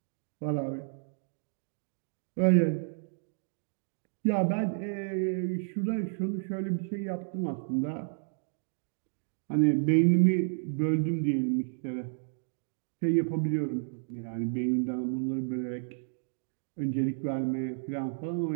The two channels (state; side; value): silent; left; digital silence